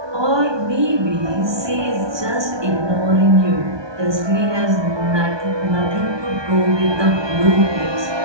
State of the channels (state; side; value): late; left; 1.2 ms